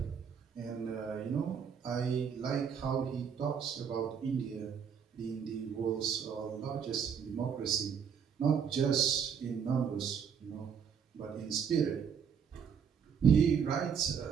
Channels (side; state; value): left; quieter; 7.2 dB